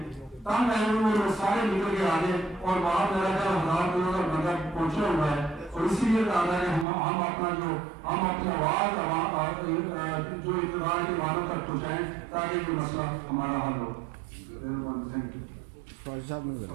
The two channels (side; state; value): left; drops out; at 6.9 s